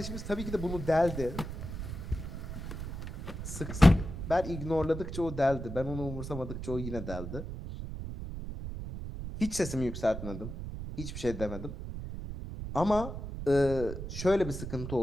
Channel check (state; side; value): noise; right; rumble, 7 dB below the sound